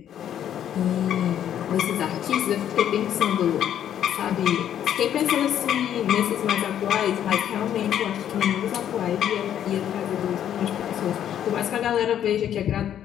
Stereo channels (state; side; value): quieter; right; 10.2 dB